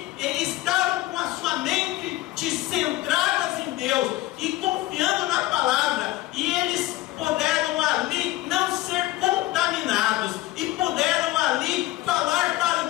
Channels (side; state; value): right; quieter; 17.4 dB